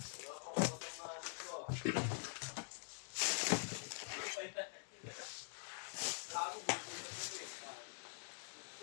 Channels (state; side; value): silent; right; digital silence